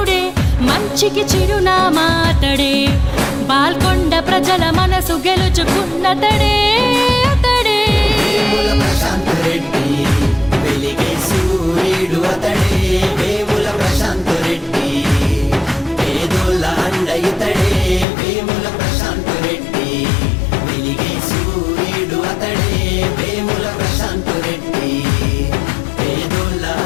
మంచికి చిరునామా అతడే. బాల్కొండ ప్రజల మనసు గెలుచుకున్నతడే అతడే. వేముల ప్రశాంత్ రెడ్డి వెలిగే సూర్యుడు అతడే. వేముల ప్రశాంత్ రెడ్డి పేదోళ్ళ అండ ఇతడే. వేముల ప్రశాంత్ రెడ్డి వెలిగే సూర్యుడు అతడే. వేముల ప్రశాంత్ రెడ్డి పేదోళ్ళ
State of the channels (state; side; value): drops out; right; at 18.1 s